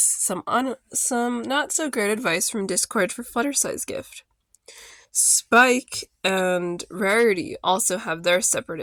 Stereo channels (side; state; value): both; identical; correlation 1.00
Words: some not so great advice from Discord for Fluttershy's gift. Spike and Rarity also have their separate